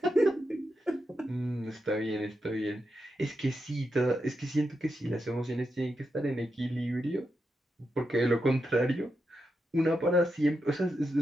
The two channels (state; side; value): normal; both; correlation 0.86